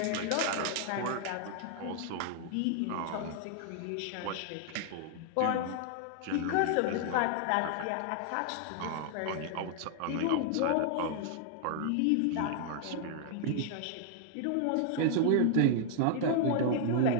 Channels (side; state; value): both; different; correlation 0.00